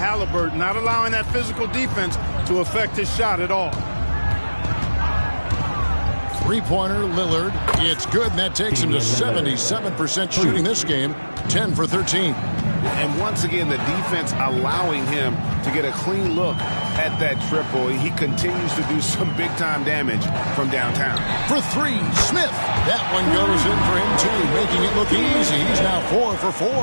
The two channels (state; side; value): inverted; both; correlation -1.00